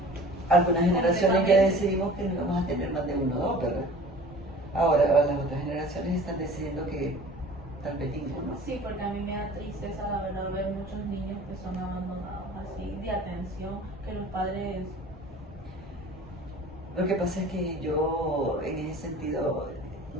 Algunas generaciones ya Completamente. decidimos que no vamos a tener más de uno o dos, ¿verdad? Ahora las otras generaciones están decidiendo que tal vez ninguno. Sí, porque a mí me da tristeza, la verdad, ver muchos niños que son abandonados así, de atención, que los padres... Lo que pasa es que yo, en ese sentido,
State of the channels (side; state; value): both; normal; correlation 0.44